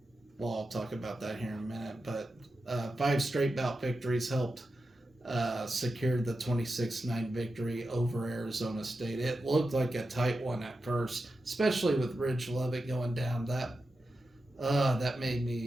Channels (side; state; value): both; normal; correlation 0.90